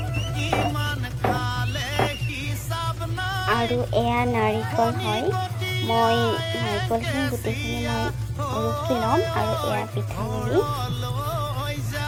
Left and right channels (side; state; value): both; identical; correlation 1.00